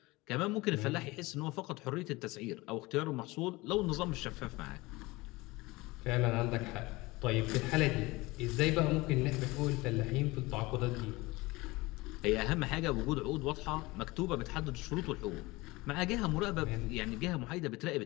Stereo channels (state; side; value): quieter; right; 21.9 dB